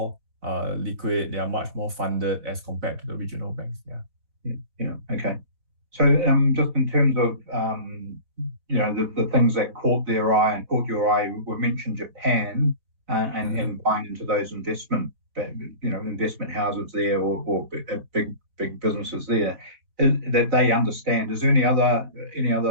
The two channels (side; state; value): left; late; 4.1 ms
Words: liquid, they are much more funded as compared to the regional banks. Yeah. Okay. So just in terms of the things that caught your eye, we mentioned Japan and buying into those investment houses there, or big businesses there that they understand. Is there any other